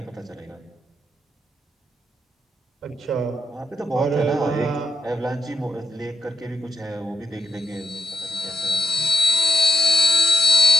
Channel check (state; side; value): normal; both; correlation 0.81